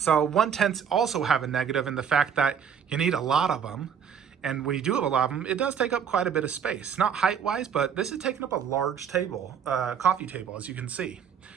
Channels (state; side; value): quieter; left; 7.7 dB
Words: 1/10s also have a negative in the fact that you need a lot of them. And when you do have a lot of them, it does take up quite a bit of space. Not height-wise, but this is taking up a large table, coffee table, as you can see.